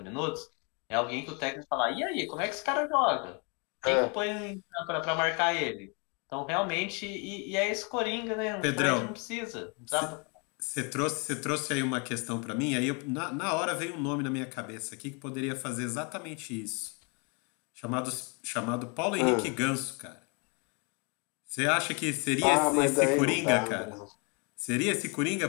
minutos. É alguém que o técnico fala, e aí, como é que esse cara joga? Quem que eu ponho para marcar ele? Então, realmente, e é esse Coringa, né? O Fred não Pedrão, precisa. Não dá você trouxe aí uma questão para mim, aí na hora veio um nome na minha cabeça aqui que poderia fazer exatamente isso. Chamado Paulo Henrique Ah, Ganso, cara. Você acha que seria esse, mas esse daí não Coringa, dá, cara? não. Seria esse Coringa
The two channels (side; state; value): right; quieter; 33.7 dB